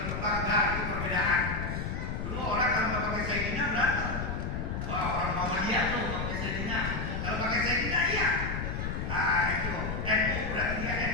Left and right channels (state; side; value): noise; left; rumble, 3 dB below the sound